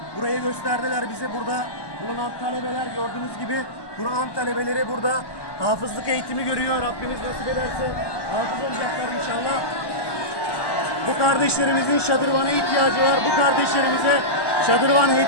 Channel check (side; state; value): right; late; 1.1 ms